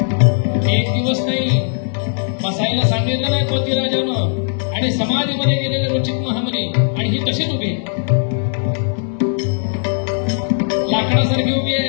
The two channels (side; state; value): right; silent; 61 dB below the other